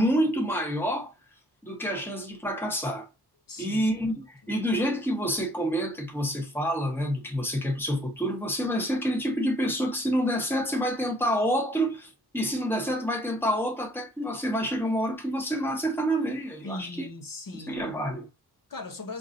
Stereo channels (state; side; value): normal; both; correlation 0.63